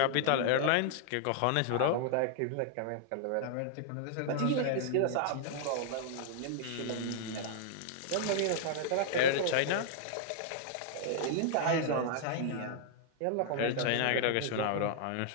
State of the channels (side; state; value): both; different; correlation -0.01